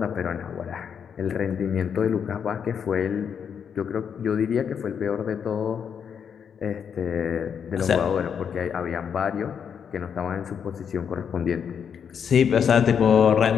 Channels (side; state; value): right; quieter; 7.4 dB